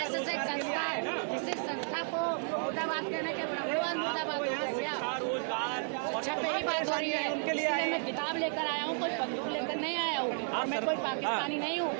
एक संस्था है, इसी संस्था को मुर्दाबाद कहने के ब्राह्मणवाद मुर्दाबाद हो गया क्या? अच्छा पे ही बात हो रही है, इसलिए मैं किताब लेकर आया हूँ, कोई बंदूक लेकर नहीं आया हूँ और मैं कोई पाकिस्तानी नहीं हूँ।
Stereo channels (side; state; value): left; silent; 56 dB below the other